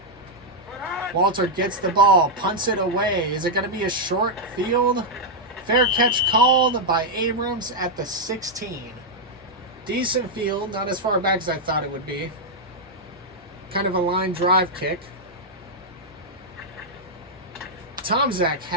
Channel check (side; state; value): both; normal; correlation -0.04